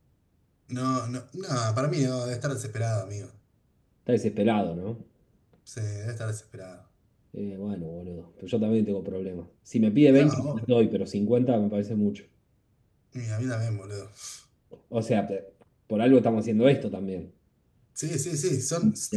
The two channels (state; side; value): identical; both; correlation 1.00